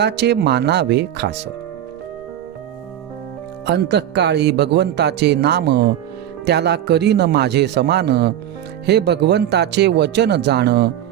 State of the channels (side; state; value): left; quieter; 11.3 dB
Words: मानावे खास. अंतःकाळी भगवंताचे नाम त्याला करीन माझे समान. हे भगवंताचे वचन जाण